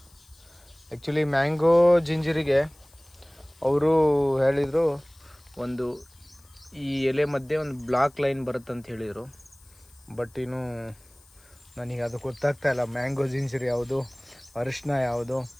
ಆ್ಯಕ್ಚುಲಿ ಮ್ಯಾಂಗೋ ಜಿಂಜರಿಗೆ ಅವರು ಹೇಳಿದರು, ಒಂದು ಈ ಎಲೆ ಮಧ್ಯೆ ಒಂದು ಬ್ಲಾಕ್ ಲೈನ್ ಬರುತ್ತೆ ಅಂತ ಹೇಳಿದರು. ಬಟ್ ಇನ್ನು ನನಗೆ ಅದು ಗೊತ್ತಾಗ್ತಾಯಿಲ್ಲ, ಮ್ಯಾಂಗೋ ಜಿಂಜರ್ ಯಾವುದು, ಅರಿಶಿನ ಯಾವುದು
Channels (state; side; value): noise; left; hiss, 28 dB below the sound